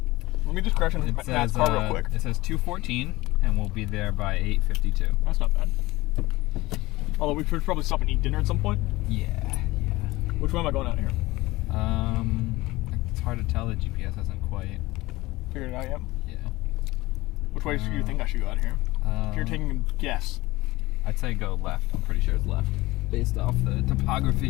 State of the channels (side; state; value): right; quieter; 19.5 dB